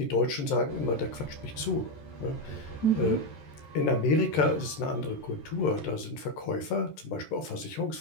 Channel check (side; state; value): right; late; 14 ms